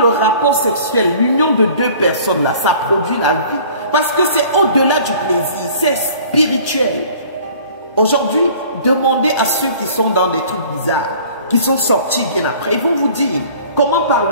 rapport sexuel, l'union de deux personnes là, ça produit la vie. Parce que c'est au-delà du plaisir, c'est spirituel. Aujourd'hui, demandez à ceux qui sont dans des trucs bizarres, qui sont sortis bien après, ils vont vous dire comment par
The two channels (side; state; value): both; inverted; correlation -0.50